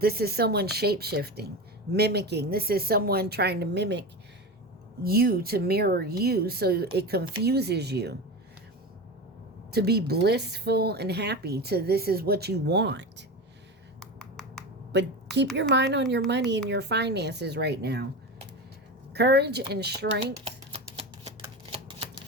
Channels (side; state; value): both; normal; correlation 0.24